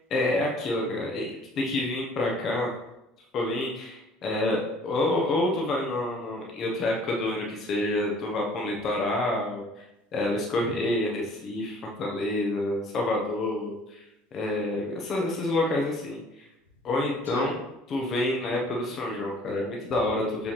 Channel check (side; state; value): both; normal; correlation 0.54